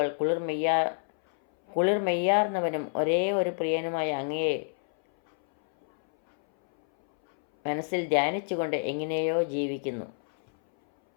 കുളിർമെയ്യാർന്നവനും ഒരേ ഒരു പ്രിയനുമായ അങ്ങയെ മനസ്സിൽ ധ്യാനിച്ചുകൊണ്ട് എങ്ങനെയോ ജീവിക്കുന്നു.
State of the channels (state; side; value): silent; right; 60 dB below the other